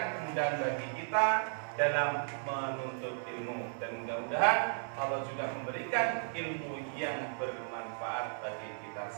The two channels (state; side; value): silent; left; 54 dB below the other